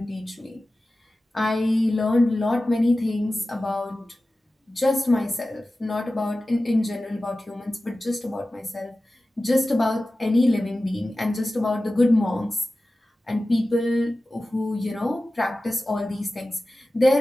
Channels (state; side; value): normal; both; correlation 0.95